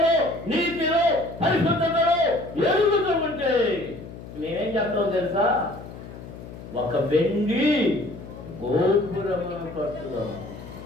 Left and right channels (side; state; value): left; noise; hum, 14 dB below the sound